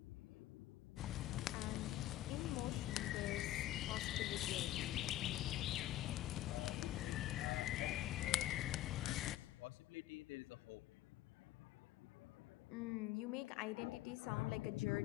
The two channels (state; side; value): quieter; right; 14.4 dB